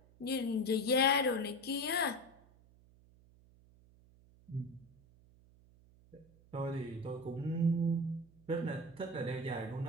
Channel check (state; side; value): noise; right; hum, 27 dB below the sound